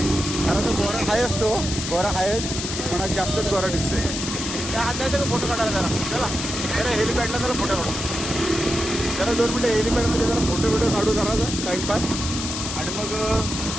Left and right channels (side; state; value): left; noise; hiss, 5 dB below the sound